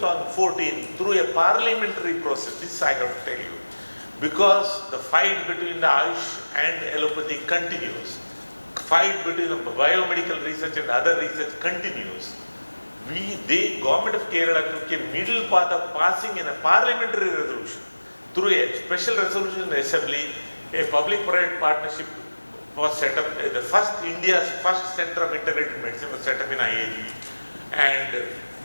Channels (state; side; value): inverted; both; correlation -1.00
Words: through a parliamentary process, this I have to tell you, because the fight between the Ayush and allopathy continues, fight between the biomedical research and other research continues, the government of Kerala took a middle path of passing in a parliamentary resolution. Through a special resolution in the assembly, a public-private partnership was set up. India's first center of integrated medicine was set up in IAG, and